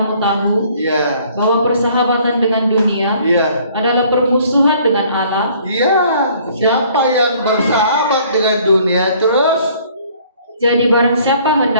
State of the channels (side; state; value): both; inverted; correlation -0.58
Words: tahu Ya. bahwa persahabatan dengan dunia Ya. adalah permusuhan dengan Allah? Ya. Siapa yang bersahabat dengan dunia terus Jadi barang siapa